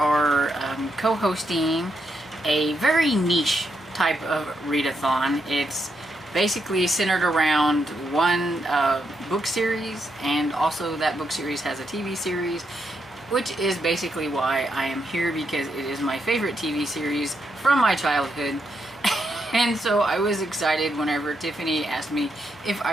co-hosting a very niche type of readathon. It's basically centered around one book series, and also that book series has a TV series, which is basically why I am here, because it is my favorite TV series from my childhood. And so I was excited whenever Tiffany asked me if I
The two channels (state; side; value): normal; both; correlation 0.80